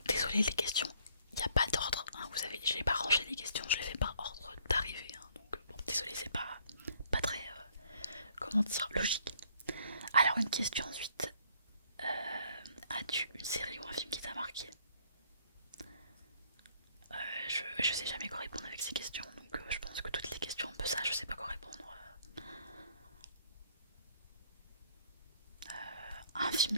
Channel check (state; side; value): inverted; both; correlation -0.63